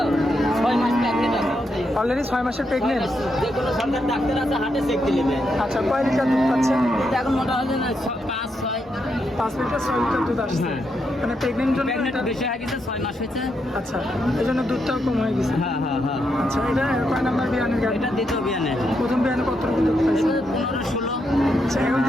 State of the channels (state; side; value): normal; both; correlation 0.81